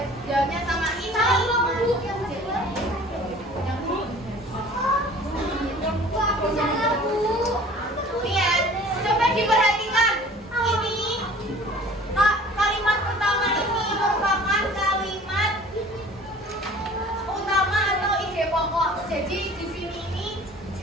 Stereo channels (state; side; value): normal; both; correlation 0.47